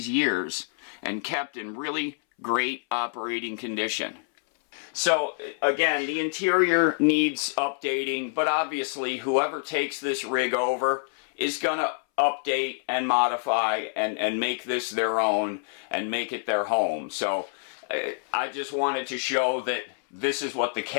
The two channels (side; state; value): right; silent; 60 dB below the other